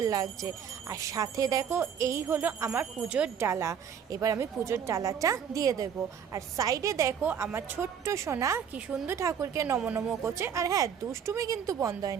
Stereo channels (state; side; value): quieter; left; 7.8 dB